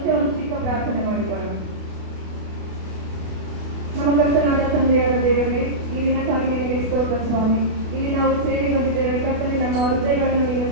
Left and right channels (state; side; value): late; left; 28 ms